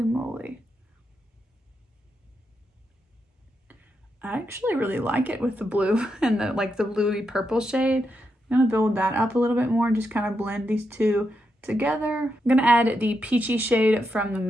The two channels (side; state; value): both; normal; correlation 0.84